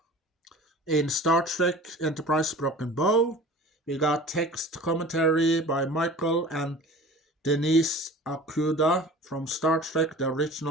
in Star Trek Enterprise Broken Bow. We got text commentary by Michael and Denise Okuda from Star Trek, the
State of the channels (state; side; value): normal; both; correlation 0.41